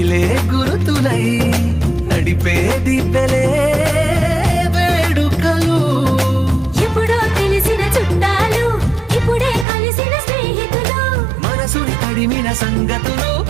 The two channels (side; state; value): left; drops out; at 9.7 s